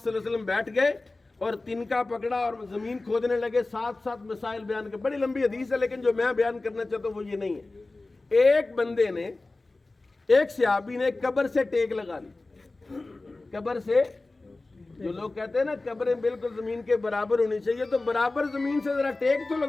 اللہ علیہ وسلم بیٹھ گئے اور تنکا پکڑا اور زمین کھودنے لگے، ساتھ مسائل بیان کر، بڑی لمبی حدیث ہے لیکن جو میں بیان کرنا چاہتا ہوں وہ یہ نہیں ہے۔ ایک بندے نے، ایک صحابی نے قبر سے ٹیک لگا لی، قبر سے، جو لوگ کہتے ہیں نا قبریں بالکل زمین کے برابر ہونی چاہیے، تو برابر زمین سے ذرا ٹیک تو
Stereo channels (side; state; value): right; quieter; 3.2 dB